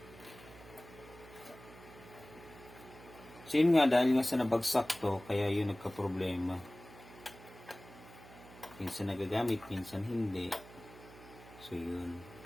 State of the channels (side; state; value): right; noise; hum, 19 dB below the sound